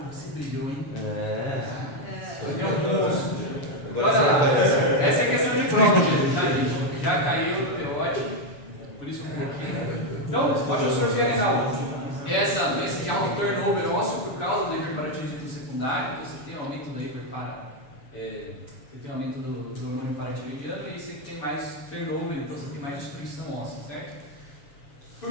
você brilhou, hein? É. É um monstro. Olha lá, essa é questão de prova, gente, tá, gente? Já caiu no teórico, por isso um pouquinho. Então, osteostrofia renal. Essa doença de alto turnover ósseo por causa do hiperparatiroidismo secundário, então você tem aumento do você tem aumento do hormônio paratiroidiano e você tem mais turnover, então você tem mais destruição óssea, certo?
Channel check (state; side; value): late; right; 7.0 ms